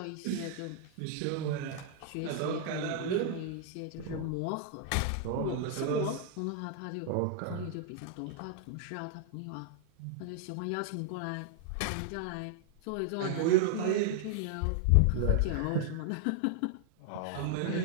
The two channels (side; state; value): both; different; correlation 0.00